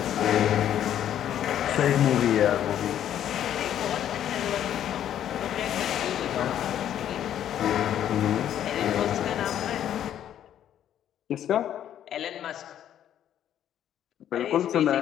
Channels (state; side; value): quieter; right; 10.6 dB